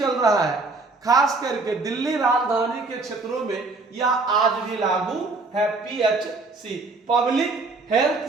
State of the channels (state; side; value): quieter; left; 3.6 dB